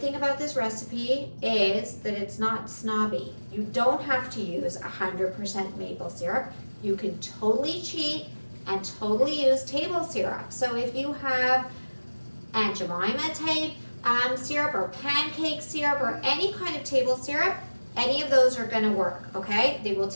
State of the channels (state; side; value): inverted; both; correlation -1.00